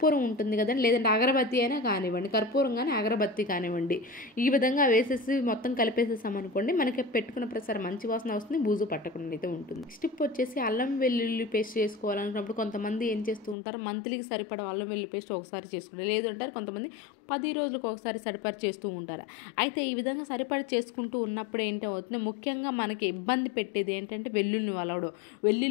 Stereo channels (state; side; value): drops out; right; at 13.6 s